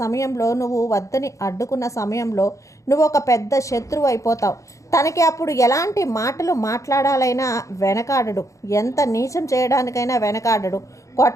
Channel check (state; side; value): late; right; 0.15 ms